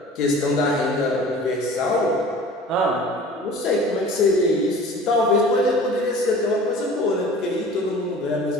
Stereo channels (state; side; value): normal; both; correlation 0.43